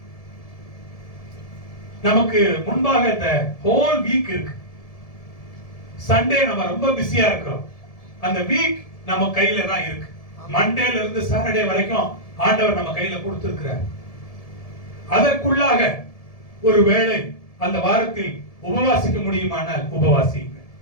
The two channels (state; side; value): late; right; 1.7 ms